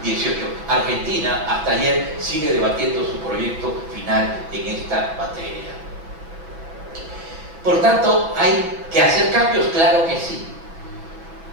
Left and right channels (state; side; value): late; left; 6.4 ms